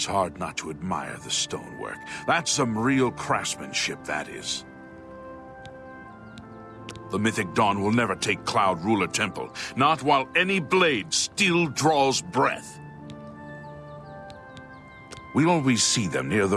hard not to admire the stonework. That's some real craftsmanship, that is. The mythic dawn will never take Cloud Ruler Temple, not while any blade still draws breath. We'll always see them near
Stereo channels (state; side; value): identical; both; correlation 1.00